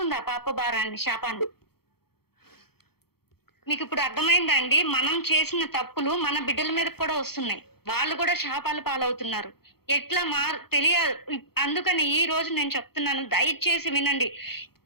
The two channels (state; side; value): late; right; 0.96 ms